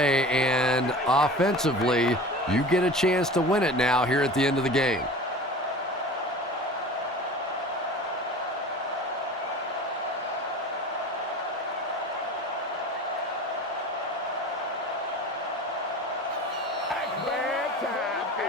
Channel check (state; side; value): normal; both; correlation 0.37